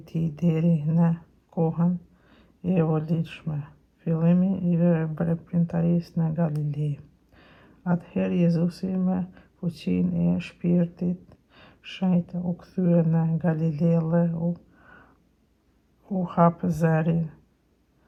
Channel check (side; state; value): both; identical; correlation 1.00